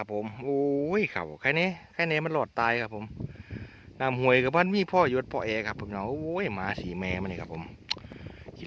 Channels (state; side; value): identical; both; correlation 1.00